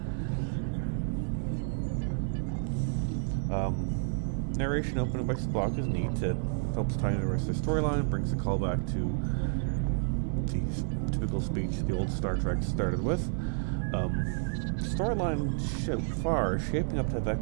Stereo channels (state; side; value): silent; left; digital silence